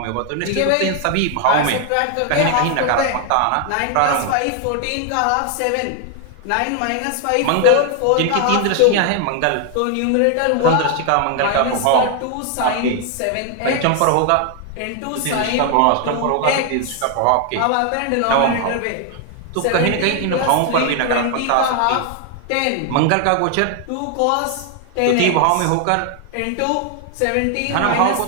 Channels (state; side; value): different; both; correlation 0.00